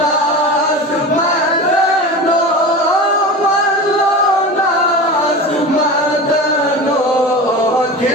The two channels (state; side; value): normal; both; correlation 0.30